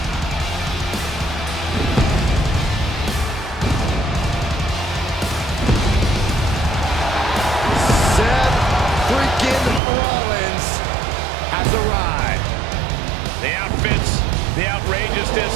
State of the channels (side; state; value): left; drops out; at 9.8 s